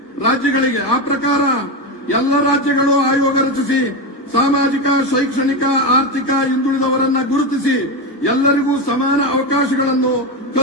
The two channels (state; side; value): late; right; 1.2 ms